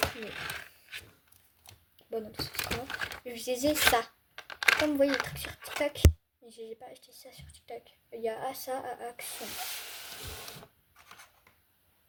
mais. Bon, non, parce que c'est moi. Je disais ça. Comme vous voyez le truc sur TikTok, mais je n'ai pas acheté ça sur TikTok. Il y a ça à Action.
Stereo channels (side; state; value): both; identical; correlation 1.00